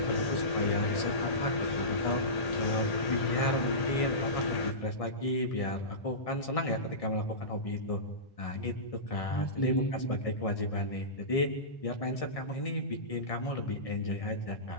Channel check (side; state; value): right; late; 1.6 ms